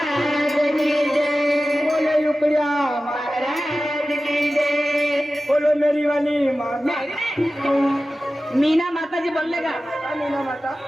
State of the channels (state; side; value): normal; both; correlation 0.95